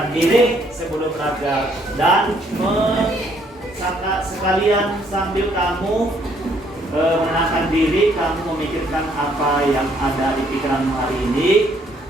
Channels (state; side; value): normal; both; correlation 0.67